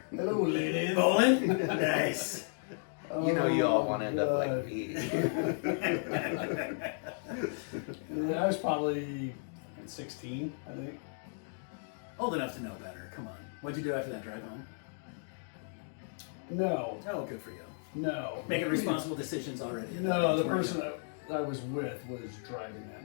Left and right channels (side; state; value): right; silent; digital silence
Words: Hello, ladies. Bowling? Nice. You know you all want to end up God. like me. I was probably 16, I think. Old enough to know better. Come on. What'd you do after that drive home? No, Oh, good for you. no. Making responsible decisions already. No, the Weren't person you? I was with was driving that